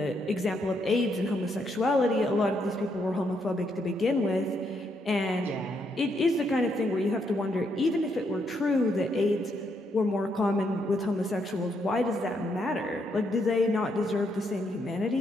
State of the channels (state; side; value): normal; both; correlation 0.76